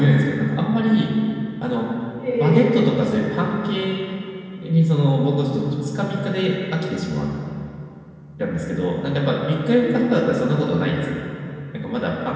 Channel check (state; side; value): identical; both; correlation 1.00